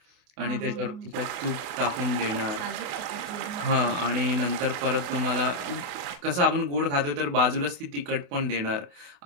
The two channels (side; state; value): left; late; 28 ms